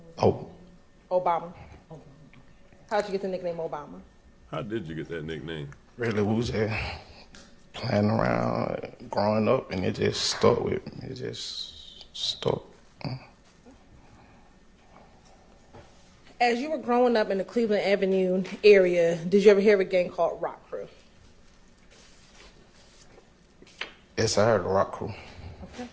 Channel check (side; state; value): both; identical; correlation 1.00